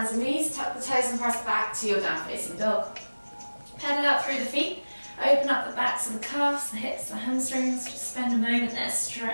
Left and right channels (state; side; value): inverted; both; correlation -1.00